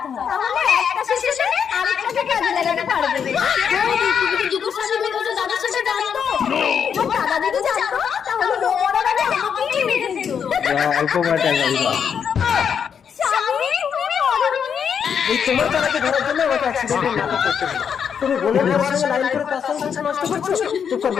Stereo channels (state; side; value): quieter; right; 7.4 dB